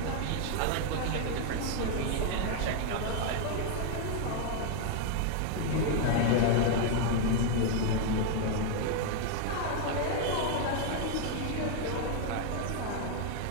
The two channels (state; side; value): different; both; correlation 0.00